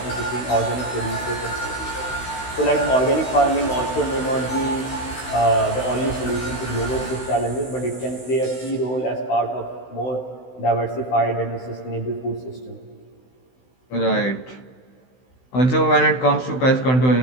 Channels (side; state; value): right; late; 16 ms